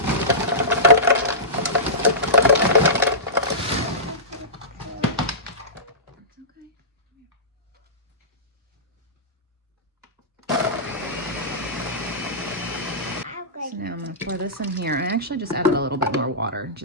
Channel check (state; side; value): normal; both; correlation -0.18